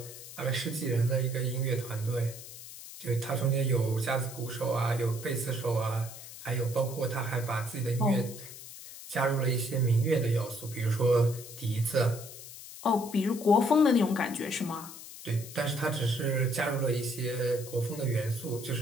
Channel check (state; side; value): noise; left; hiss, 14 dB below the sound